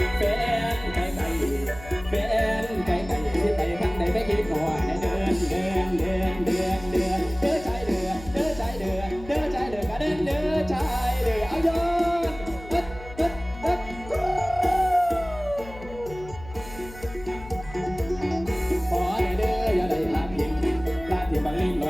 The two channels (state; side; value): noise; left; hum, 16 dB below the sound